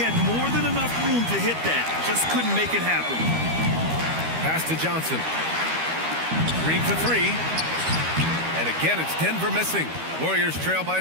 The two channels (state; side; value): late; left; 13 ms